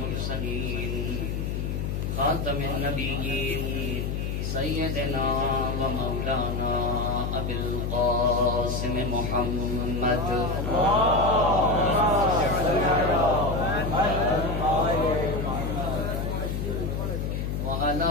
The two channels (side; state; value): left; noise; hum, 2 dB below the sound